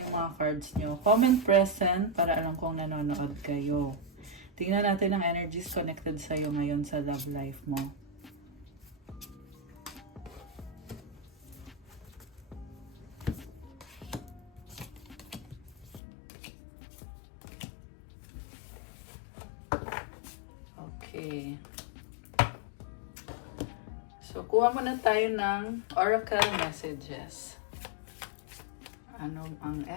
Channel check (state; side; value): drops out; right; at 16.0 s